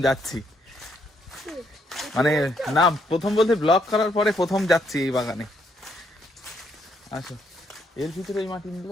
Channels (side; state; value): both; normal; correlation 0.73